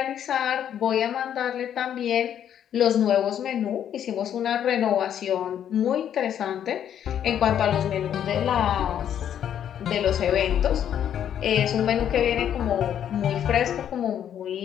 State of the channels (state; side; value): quieter; right; 9.7 dB